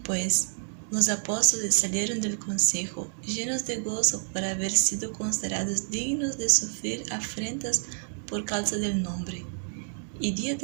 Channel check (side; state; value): left; silent; digital silence